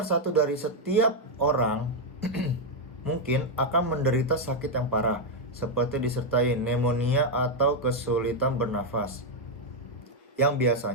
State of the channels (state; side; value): normal; both; correlation 0.01